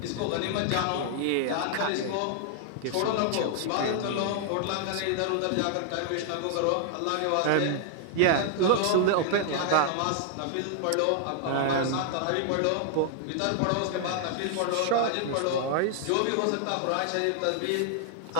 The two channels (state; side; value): different; both; correlation -0.01